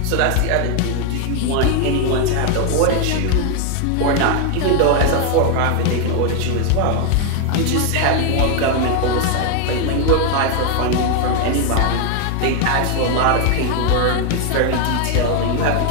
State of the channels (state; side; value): different; both; correlation 0.01